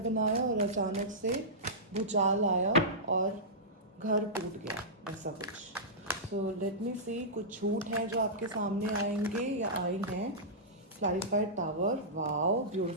बनाया और अचानक से भूचाल आया और घर टूट गया, ऐसा कुछ. सो लेट मी सी, कुछ झूठ हैं जो आपके सामने आएंगे या आई हैं. Clarified tower. Wow,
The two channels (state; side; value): normal; both; correlation -0.15